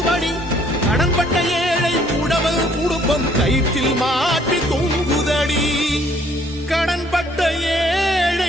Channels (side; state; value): both; normal; correlation 0.62